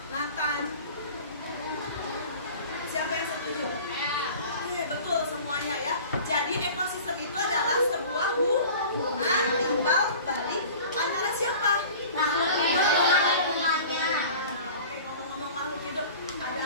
Nathan? Siapa yang setuju? Oke, betul semuanya ya. Jadi ekosistem itu adalah sebuah hubungan timbal balik antara siapa? Makhluk hidup dengan lingkungannya. Oke, ngomong-ngomong makhluk hidup, ada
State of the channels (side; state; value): both; inverted; correlation -0.42